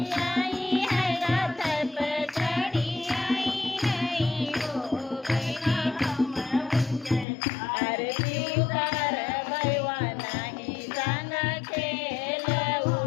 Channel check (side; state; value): right; drops out; at 7.2 s